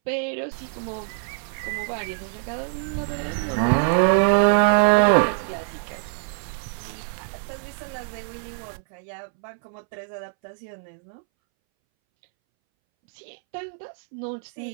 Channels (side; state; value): left; silent; 62 dB below the other